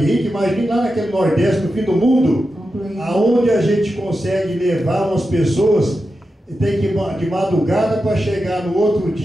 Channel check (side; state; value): both; normal; correlation 0.90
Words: rica, imagine lá naquele Nordeste, no fim do mundo, aonde a gente consegue levar umas pessoas, tem que ir de madrugada para chegar no outro